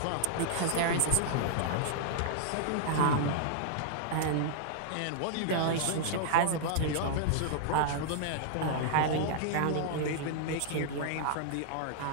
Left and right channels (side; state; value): both; different; correlation -0.01